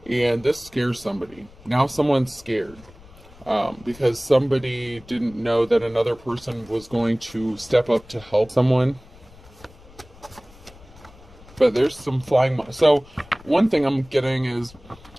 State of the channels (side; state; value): left; noise; rumble, 23 dB below the sound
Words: and this scares somebody. Now someone's scared because somebody didn't know that another person was going to step up to help someone. But there's some flying. So one thing I'm getting is,